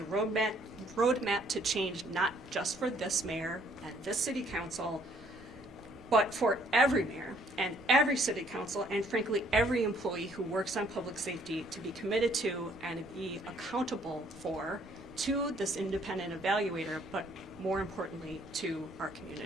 roadmap to change not just for this mayor and this city council, but for every mayor and every city council and frankly every employee who works on public safety to be committed to and be accountable for to this independent evaluator, but more importantly to our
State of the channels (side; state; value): right; noise; rumble, 23 dB below the sound